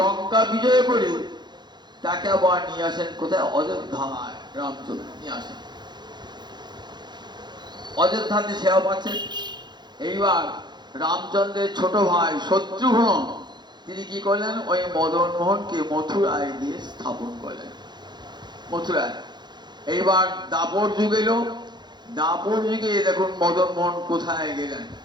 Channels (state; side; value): late; left; 0.21 ms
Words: বিজয় করে তাকে আবার নিয়ে আসেন কোথায়? অযোধ্যায়। রামচন্দ্র নিয়ে আসেন, অযোধ্যাতে সেবা পাচ্ছেন। এইবার রামচন্দ্রের ছোট ভাই শত্রুঘ্ন তিনি কি করলেন? ওই মদন মোহনকে মথুরায় দিয়ে স্থাপন করলেন, মথুরায়। এইবার দাপর যুগ এলো। দাপর যুগে দেখুন মদন মোহন কোথায় গেলেন?